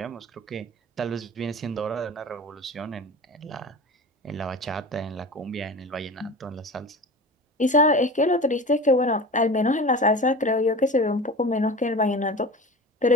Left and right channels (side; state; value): both; normal; correlation 0.34